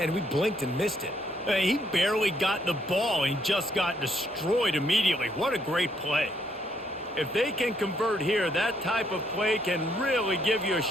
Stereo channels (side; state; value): both; normal; correlation 0.71